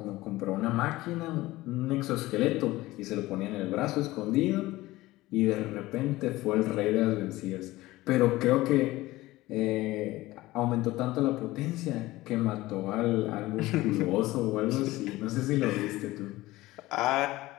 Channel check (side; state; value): right; quieter; 18.2 dB